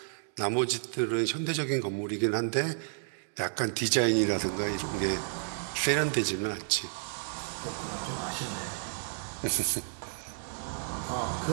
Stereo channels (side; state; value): left; silent; digital silence